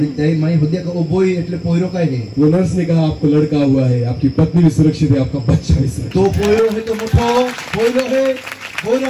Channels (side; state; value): both; identical; correlation 1.00